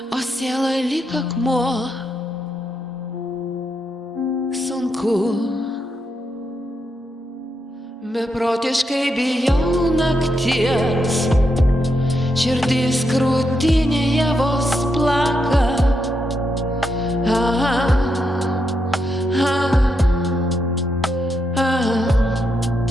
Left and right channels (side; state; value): both; normal; correlation 0.82